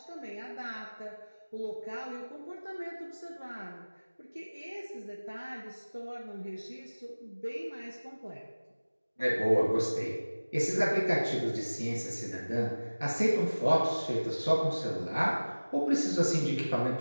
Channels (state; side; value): inverted; both; correlation -1.00